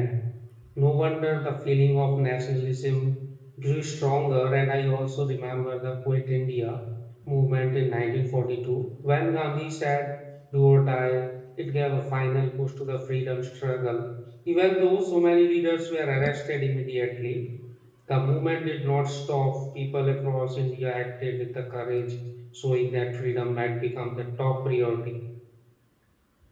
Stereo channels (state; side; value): identical; both; correlation 1.00